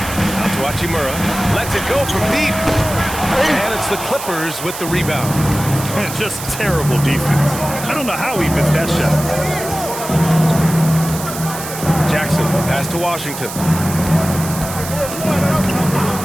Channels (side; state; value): right; noise; hiss, 9 dB below the sound